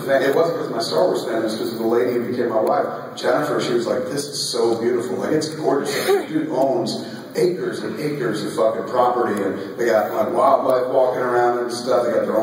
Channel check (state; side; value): identical; both; correlation 1.00